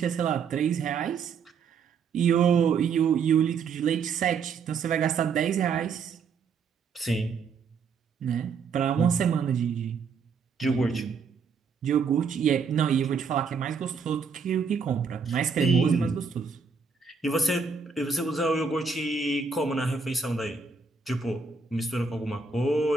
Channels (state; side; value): quieter; left; 5.4 dB